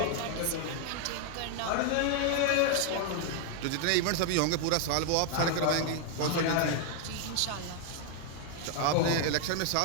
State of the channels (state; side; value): different; both; correlation 0.00